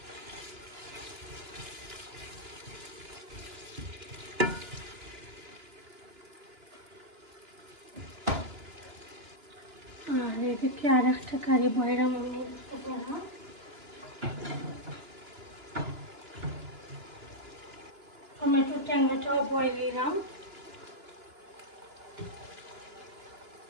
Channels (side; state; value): left; late; 2.9 ms